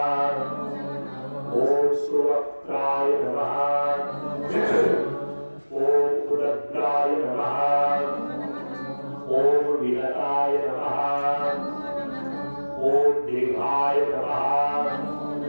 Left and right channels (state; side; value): inverted; both; correlation -1.00